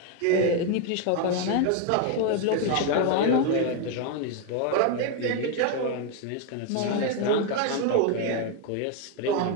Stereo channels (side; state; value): both; different; correlation 0.01